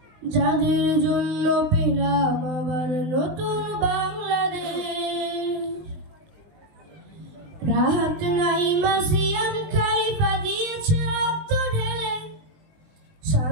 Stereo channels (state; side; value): late; left; 20 ms